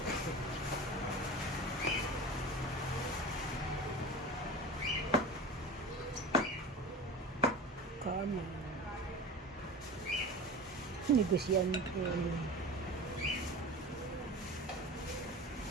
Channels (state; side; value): normal; both; correlation 0.32